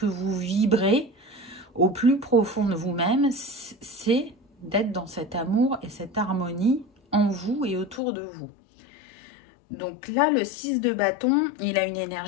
vous vibrez au plus profond de vous-même. C'est d'être dans cet amour et cette harmonie en vous et autour de vous. Donc là, le 6 de bâton, il a une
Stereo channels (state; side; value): drops out; right; at 8.0 s